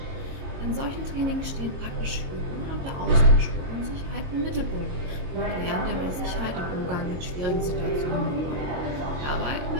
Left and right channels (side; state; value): left; late; 22 ms